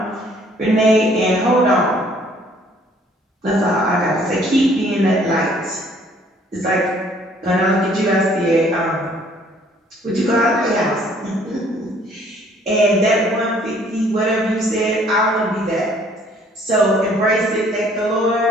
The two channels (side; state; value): both; normal; correlation 0.60